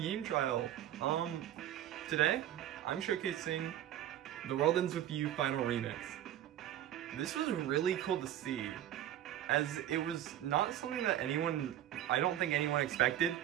trial. Today I'm showcasing The World Ends With You Final Remix. This was really cool to see, as it was not something that I don't think anyone expected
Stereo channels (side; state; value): left; quieter; 11.9 dB